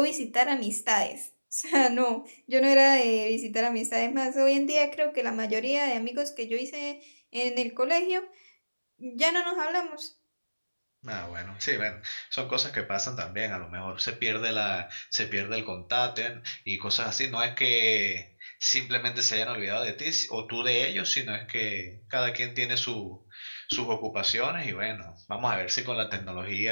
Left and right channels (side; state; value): both; inverted; correlation -1.00